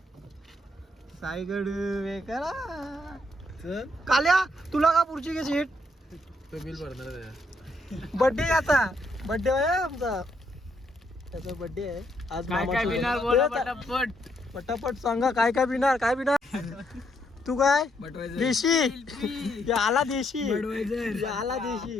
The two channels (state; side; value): normal; both; correlation 0.74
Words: साईगड करा काल्या तुला का पुढची घे सीट तो बिल भरणार बर्थडे आता बर्थडे आहे आमचा त्याचा बर्थडे आहे आज. काय काय बिनार बोला पटापट पटापट सांगा काय काय बिनार तू काय देशी या आला देशी या आला